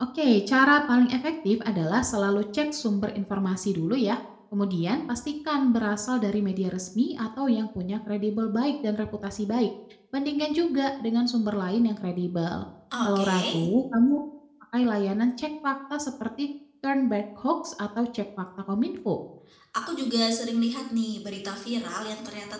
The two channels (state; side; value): identical; both; correlation 1.00